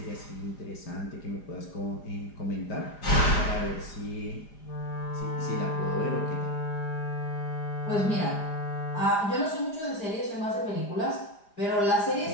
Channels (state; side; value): late; right; 4.9 ms